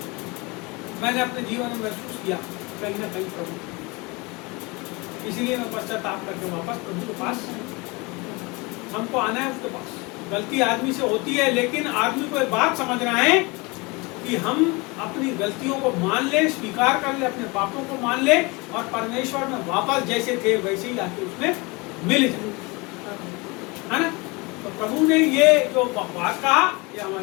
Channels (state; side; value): quieter; right; 26.3 dB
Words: मैंने अपने जीवन में महसूस किया कहीं ना कहीं प्रभु, इसलिए मैं पश्चाताप करके वापस प्रभु के पास, हमको आना है उसके पास। गलती आदमी से होती है, लेकिन आदमी को एक बात समझना है कि हम अपनी गलतियों को मान ले, स्वीकार कर ले, अपने पापों को मान ले और परमेश्वर में वापस जैसे थे वैसे ही आके उसमें मिल जाए, है ना। तो प्रभु ने ये जो बात कहा, ये